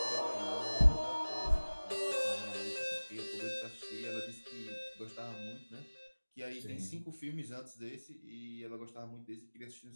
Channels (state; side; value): inverted; both; correlation -1.00